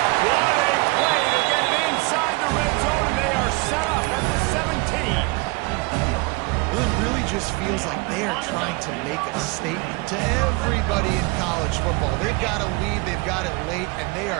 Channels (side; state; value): left; quieter; 26.9 dB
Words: What a play to get it inside the red zone, and they are set up at the 17. Well, it really just feels like they are trying to make a statement to everybody in college football. They've got a lead, they've got it late, and they